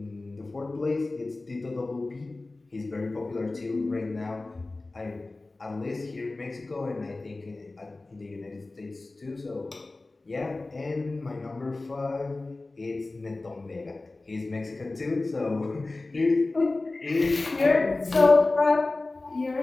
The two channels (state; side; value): quieter; right; 3.2 dB